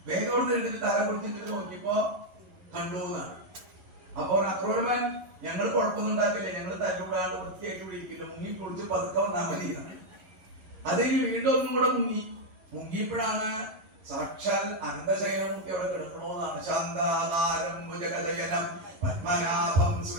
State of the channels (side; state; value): left; late; 11 ms